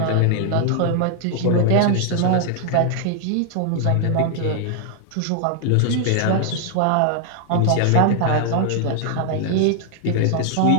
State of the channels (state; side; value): different; both; correlation 0.00